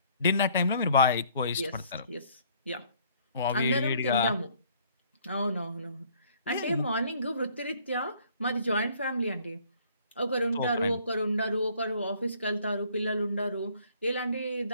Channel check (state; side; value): inverted; both; correlation -0.61